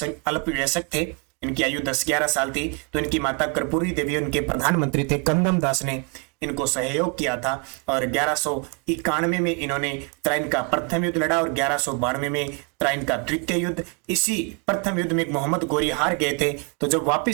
थे, इनकी आयु 10-11 साल थी, तो इनकी माता कर्पूरी देवी उनके प्रधानमंत्री थे। कंदम दास ने इनको सहयोग किया था और 1191 में इन्होंने त्राइन का प्रथम युद्ध लड़ा और 1192 में त्राइन का द्वितीय युद्ध। इसी प्रथम युद्ध में मोहम्मद गोरी हार गए थे, तो जब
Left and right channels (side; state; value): left; quieter; 34.4 dB